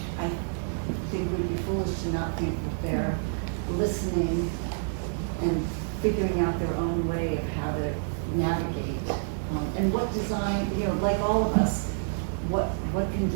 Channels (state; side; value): silent; left; digital silence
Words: I think we'd be foolish to not think that they're listening and figuring out their own way of how to navigate. And what design, like all of us, what can